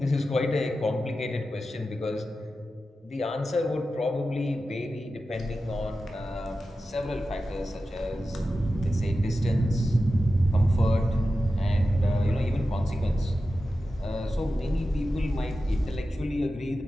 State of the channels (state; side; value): normal; both; correlation 0.92